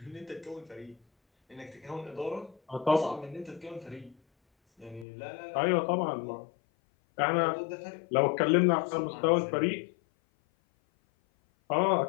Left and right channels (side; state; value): right; drops out; at 5.1 s